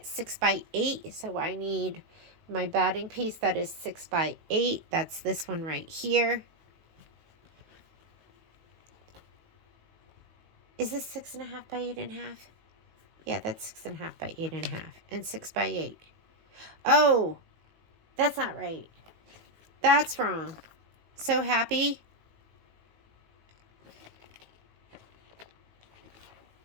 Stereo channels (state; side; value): late; left; 19 ms